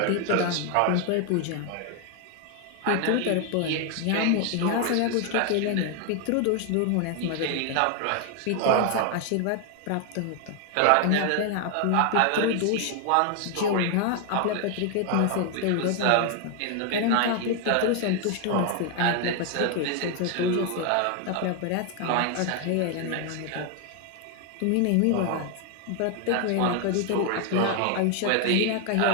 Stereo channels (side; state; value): both; different; correlation 0.01